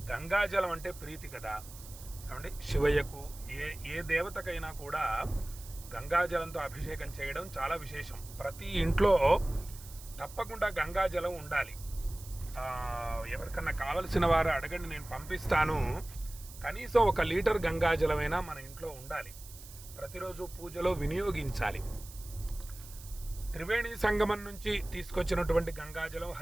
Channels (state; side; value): noise; right; hiss, 17 dB below the sound